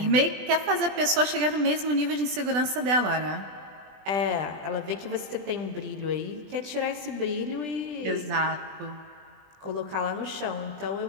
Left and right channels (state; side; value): late; left; 20 ms